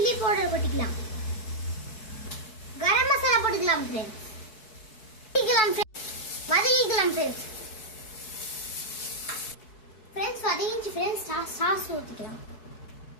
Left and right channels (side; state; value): right; late; 4.7 ms